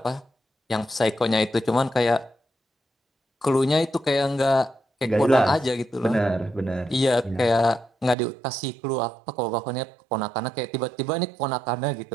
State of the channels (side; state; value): left; drops out; at 8.2 s